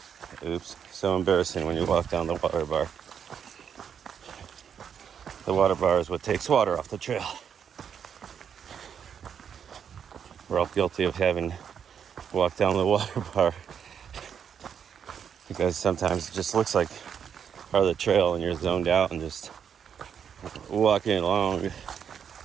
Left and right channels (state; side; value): quieter; left; 7.8 dB